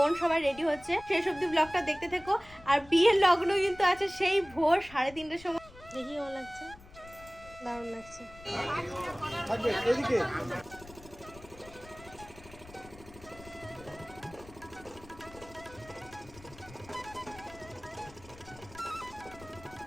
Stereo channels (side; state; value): left; noise; rumble, 20 dB below the sound